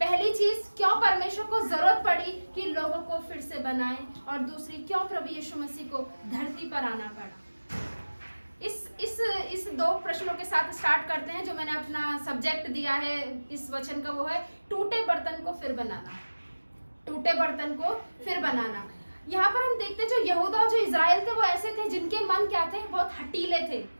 चीज, क्यों परमेश्वर को जरूरत पड़ी कि लोगों को फिर से बनाए, और दूसरी क्यों प्रभु यीशु मसीह को धरती पर आना पड़ा। इस 2 प्रश्नों के साथ स्टार्ट करते हैं। जो मैंने अपना सब्जेक्ट दिया है इस वचन का वो है टूटे बर्तन को फिर बनाना। टूटे बर्तन को फिर बनाना। यहाँ पर हम देखते हैं जो यहूदा और जो इजराइल थे वो ऐसे थे जिनके मन क्या थे, बहुत हटीले थे।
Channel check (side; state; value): both; inverted; correlation -1.00